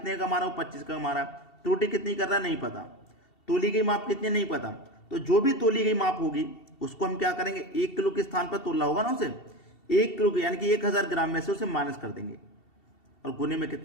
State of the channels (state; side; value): late; right; 2.7 ms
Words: का कमा रहा है? 25 का कमा रहा है। त्रुटि कितनी कर रहा है? नहीं पता। तोली गई माप कितनी? नहीं पता। तो जो भी तोली गई माप होगी उसको हम क्या करेंगे? 1 किलो के स्थान पर तोला होगा ना उसे, 1 किलो यानी कि 1000 ग्राम में से उसे माइनस कर देंगे, और गुने में